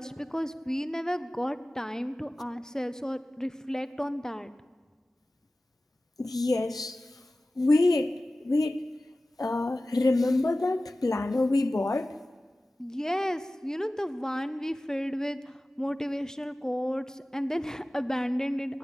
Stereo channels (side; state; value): both; normal; correlation 0.96